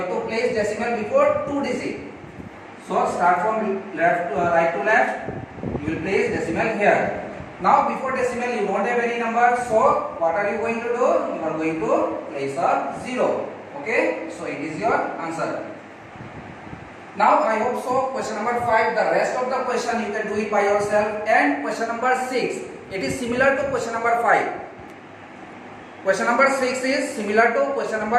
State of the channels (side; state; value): both; identical; correlation 1.00